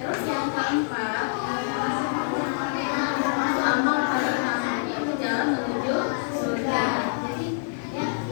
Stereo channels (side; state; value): right; silent; digital silence